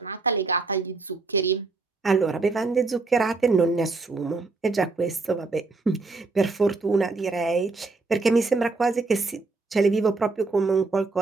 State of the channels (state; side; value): quieter; left; 3.8 dB